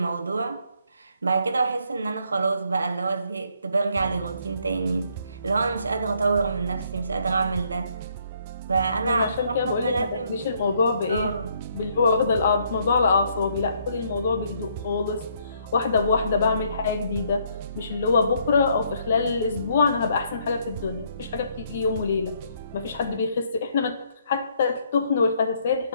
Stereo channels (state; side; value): inverted; both; correlation -0.69